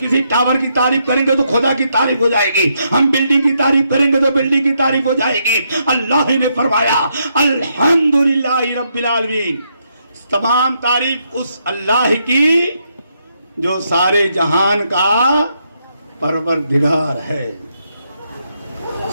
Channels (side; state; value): both; inverted; correlation -0.78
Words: ٹاور کی تعریف کریں گے تو خدا کی تعریف ہو جائے گی, ہم بلڈنگ کی تعریف کریں گے تو بلڈنگ کی تعریف ہو جائے گی. اللہ نے فرمایا الحمدللہ رب العالمین, تمام تعریف اس اللہ کی جو سارے جہان کا پروردگار ہے.